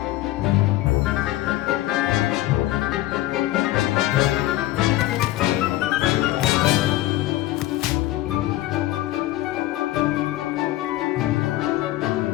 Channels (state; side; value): quieter; right; 15.9 dB